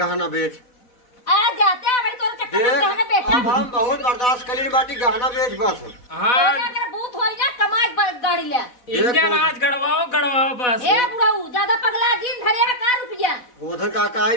बेच आ जाते हैं बड़ी तोर चक्कर में गहना बेचा। अब हम बहुत बर्दाश्त करी बाटी, गहना बेच बस। हाँ तोरे अगर भूत होई ना कमाई गाड़ी ले। इंजन आज गड़वाओ बस। ए बुढ़ाऊ ज्यादा पगला जिन धरे है का रुपया? गोधन काका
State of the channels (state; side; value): late; right; 4.0 ms